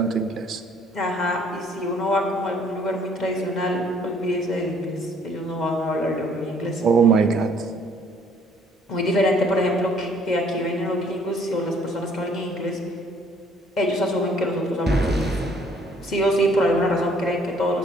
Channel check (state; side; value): normal; both; correlation 0.61